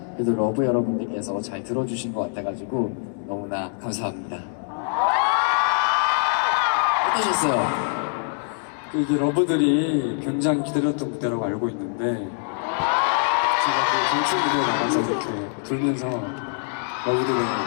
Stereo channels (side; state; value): right; silent; 63 dB below the other